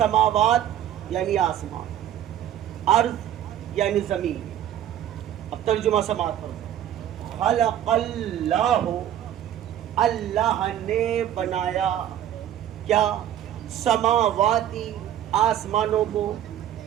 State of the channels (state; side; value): quieter; left; 11.0 dB